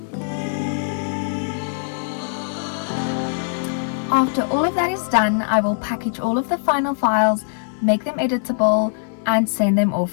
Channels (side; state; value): right; silent; 65 dB below the other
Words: After all of that is done, I will package all of the final files, make them editable, and send them